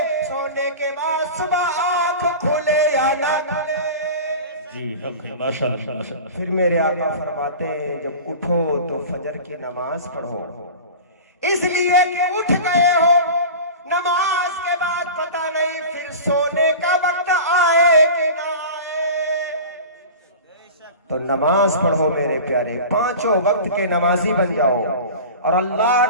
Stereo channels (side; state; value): both; inverted; correlation -0.35